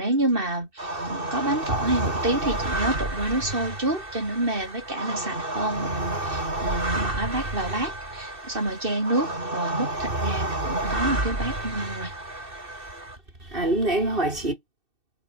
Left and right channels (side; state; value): left; late; 2.6 ms